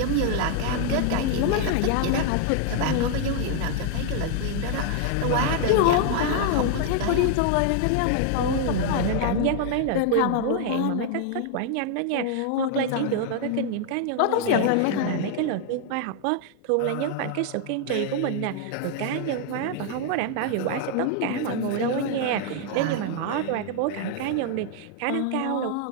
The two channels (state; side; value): different; both; correlation 0.00